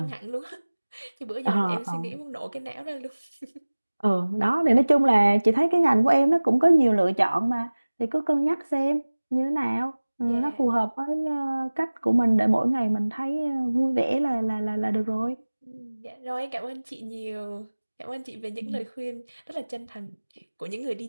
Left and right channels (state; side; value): inverted; both; correlation -1.00